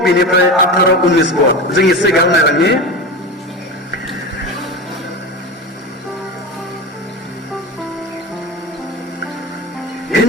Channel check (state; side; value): normal; both; correlation 0.25